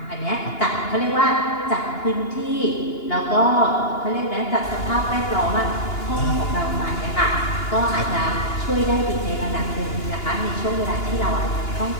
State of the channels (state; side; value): late; right; 2.8 ms